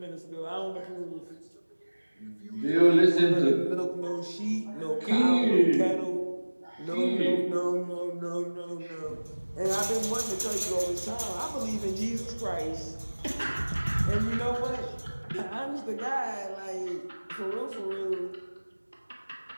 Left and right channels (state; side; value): inverted; both; correlation -1.00